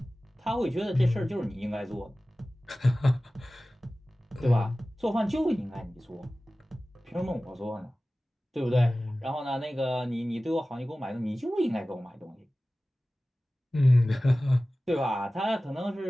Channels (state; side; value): normal; both; correlation 0.97